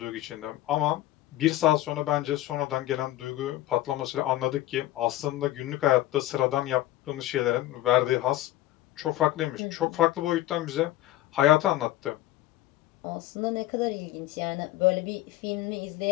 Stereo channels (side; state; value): right; quieter; 15.2 dB